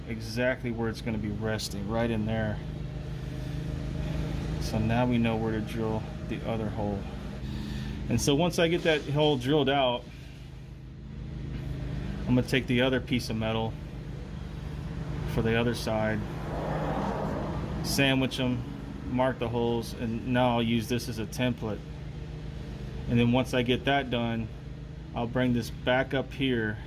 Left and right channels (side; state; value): both; identical; correlation 1.00